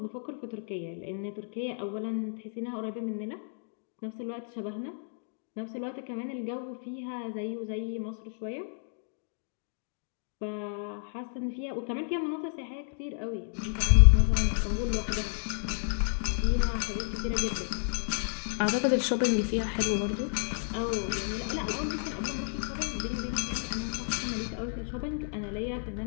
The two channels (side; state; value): right; silent; digital silence